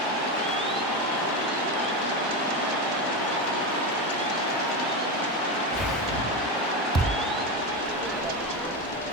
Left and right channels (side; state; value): both; normal; correlation 0.16